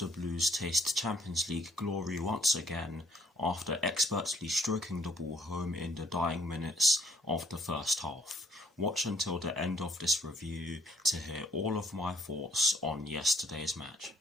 Blues taste Champions League glory once again after expertly stroking the ball home in the dying minutes of the first half. Watch until the end of this review to hear all of my thoughts on yesterday's match.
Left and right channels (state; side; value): normal; both; correlation 0.63